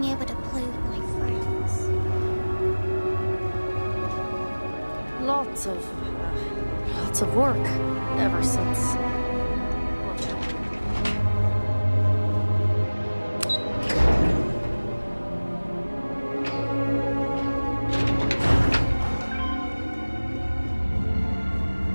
able to play with my friends. Lots of work ever since.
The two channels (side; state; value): both; inverted; correlation -1.00